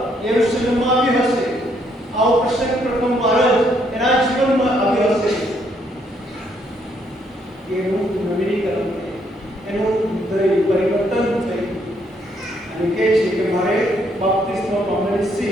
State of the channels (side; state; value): both; normal; correlation 0.71